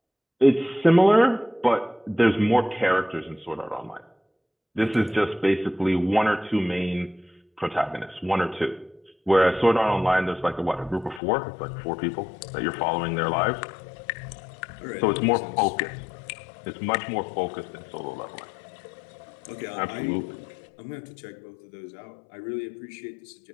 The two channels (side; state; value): right; drops out; at 11.2 s